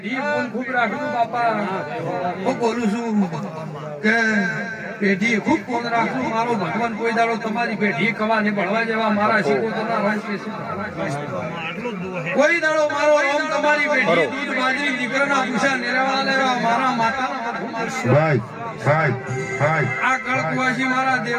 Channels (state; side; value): identical; both; correlation 1.00